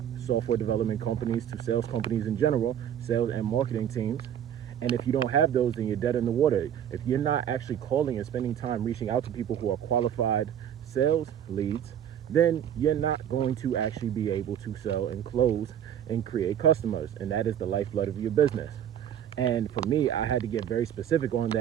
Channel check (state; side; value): quieter; left; 9.7 dB